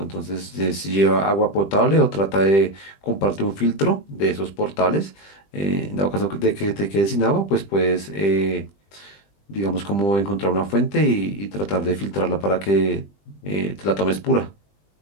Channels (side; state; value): right; late; 20 ms